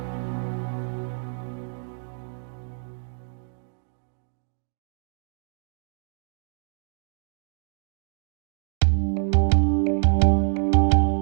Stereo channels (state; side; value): silent; left; 60 dB below the other